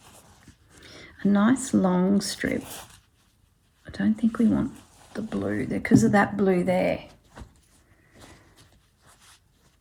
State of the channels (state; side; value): identical; both; correlation 1.00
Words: A nice long strip. I don't think we want the blue there because of that blue there.